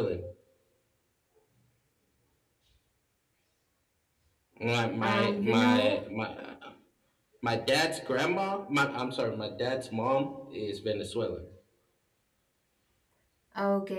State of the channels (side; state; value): both; identical; correlation 1.00